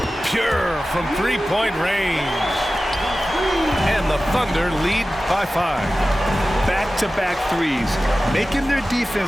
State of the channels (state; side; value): normal; both; correlation 0.95